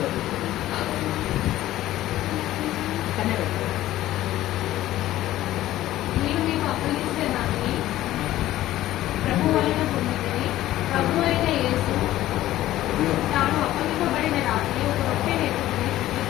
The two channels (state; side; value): quieter; right; 14.6 dB